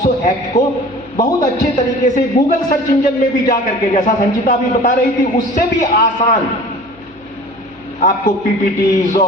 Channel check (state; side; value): noise; left; hum, 28 dB below the sound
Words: एक्ट को बहुत अच्छे तरीके से गूगल सर्च इंजन में भी जा करके, जैसा संचिता भी बता रही थी, उससे भी आसान आपको पीपीटीज